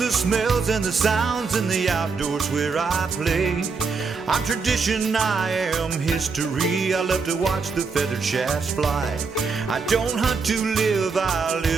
smells, and the sounds in the outdoors where I play. I'm tradition, I am history. I love to watch the feathered shafts fly. I don't hunt to live, I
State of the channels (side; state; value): left; quieter; 4.9 dB